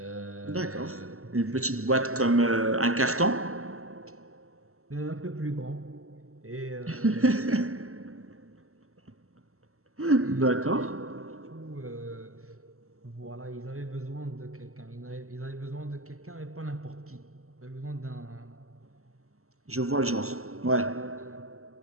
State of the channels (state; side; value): late; left; 0.63 ms